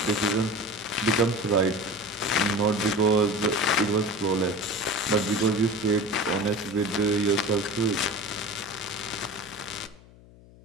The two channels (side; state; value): left; noise; hum, 23 dB below the sound